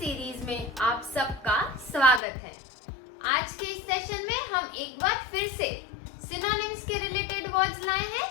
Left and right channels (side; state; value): right; drops out; at 2.2 s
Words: में आप सबका स्वागत है। आज के इस सेशन में हम एक बार फिर से सिनोनिम्स के रिलेटेड वर्ड्स लाए